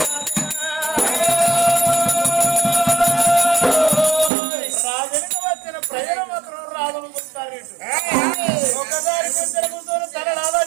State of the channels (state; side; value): drops out; left; at 4.3 s